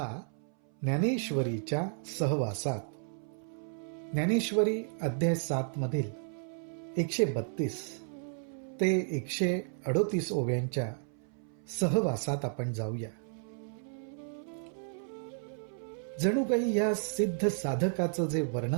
ज्ञानेश्वरीच्या सहवासात. ज्ञानेश्वरी अध्याय 7 मधील 132 ते 138 ओव्यांच्या सहवासात आपण जाऊया. जणू काही या सिद्ध साधकाचं जे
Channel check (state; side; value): silent; left; 56 dB below the other